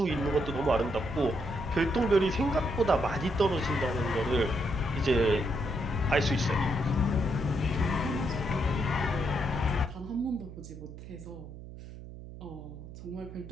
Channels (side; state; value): right; noise; hum, 13 dB below the sound